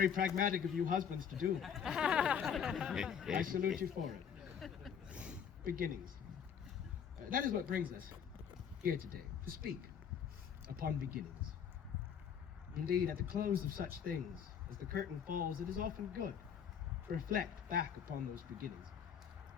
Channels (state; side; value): quieter; right; 7.8 dB